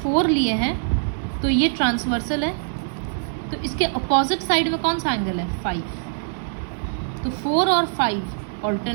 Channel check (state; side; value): silent; left; digital silence